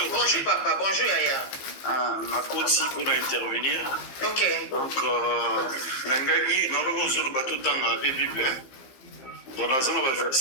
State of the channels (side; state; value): right; late; 15 ms